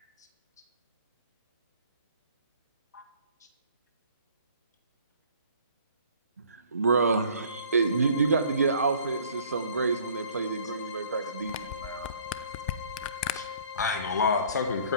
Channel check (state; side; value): inverted; both; correlation -0.55